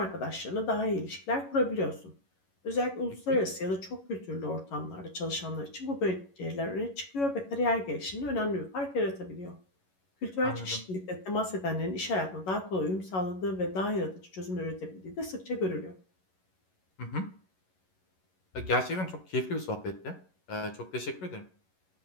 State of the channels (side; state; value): right; late; 11 ms